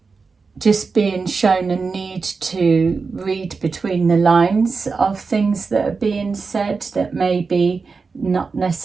Just being shown a need to read between the lines of things that are being said, that may be not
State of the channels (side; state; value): left; quieter; 4.6 dB